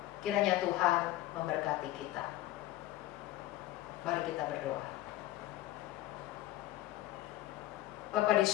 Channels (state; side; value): quieter; right; 15.3 dB